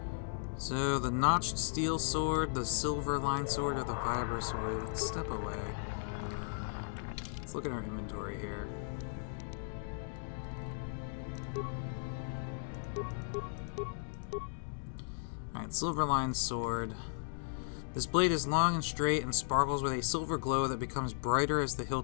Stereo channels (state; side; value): silent; right; digital silence